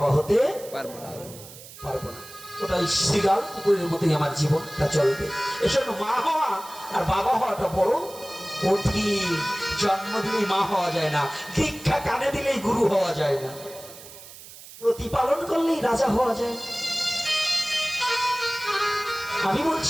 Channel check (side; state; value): right; noise; hiss, 17 dB below the sound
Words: হতে পারবো না। ওটা শ্রীগাল কুকুরের মতোই আমার জীবনটা চলবে। এজন্য মা হওয়া আর বাবা হওয়াটা বড় কঠিন। জন্ম দিলেই মা হওয়া যায় না, দীক্ষা কানে দিলেই গুরু হওয়া যায় না, প্রতিপালন করলেই রাজা হওয়া যায়। আমি